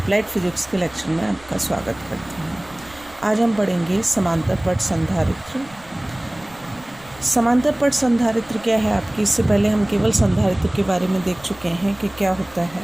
physics के लेक्चर में आपका स्वागत करती हूँ। आज हम पढ़ेंगे समांतर पट संधारित्र। समांतर पट संधारित्र क्या है आपकी, इससे पहले हम केवल संधारित्र के बारे में देख चुके हैं कि क्या होता है।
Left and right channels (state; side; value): noise; right; rumble, 24 dB below the sound